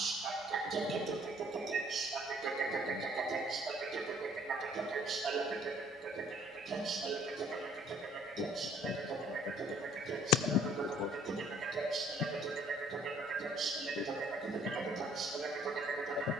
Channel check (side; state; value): both; normal; correlation 0.58